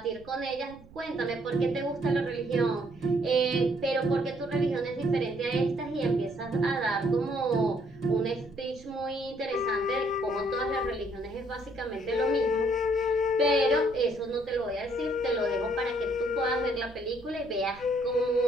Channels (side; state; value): right; noise; rumble, 21 dB below the sound